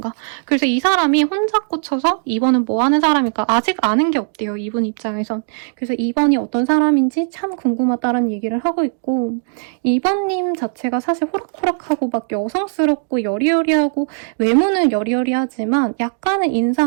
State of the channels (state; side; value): silent; left; digital silence